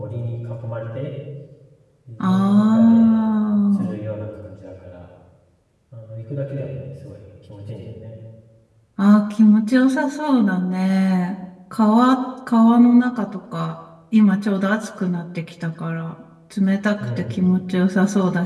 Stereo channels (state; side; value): identical; both; correlation 1.00